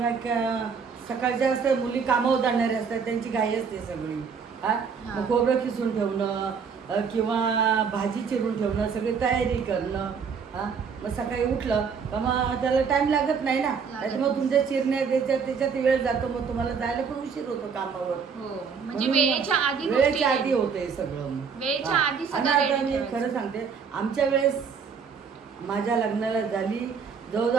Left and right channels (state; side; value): quieter; left; 6.1 dB